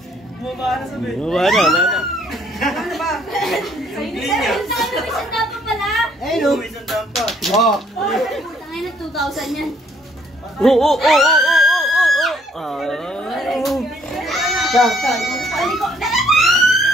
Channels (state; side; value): normal; both; correlation 0.64